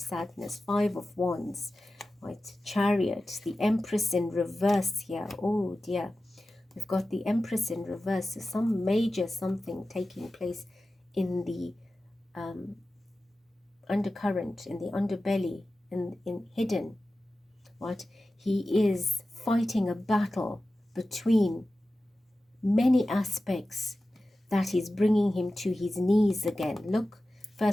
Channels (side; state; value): both; normal; correlation 0.94